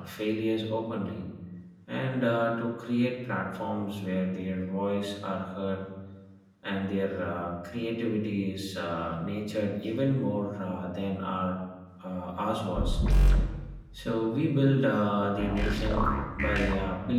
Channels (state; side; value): identical; both; correlation 1.00